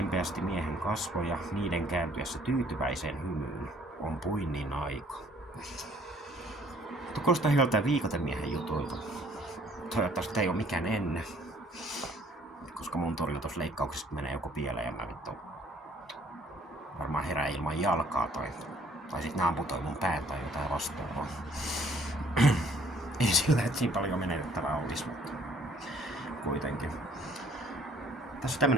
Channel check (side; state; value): both; normal; correlation 0.60